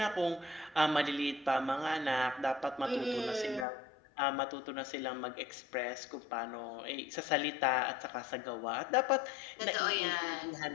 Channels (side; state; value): right; drops out; at 3.7 s